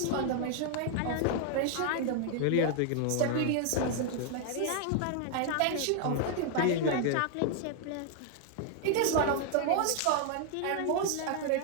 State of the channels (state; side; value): different; both; correlation 0.00